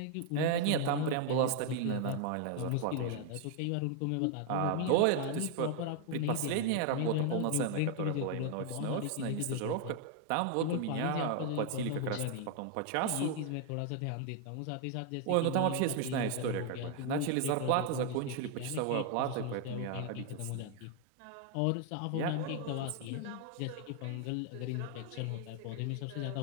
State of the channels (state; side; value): different; both; correlation 0.00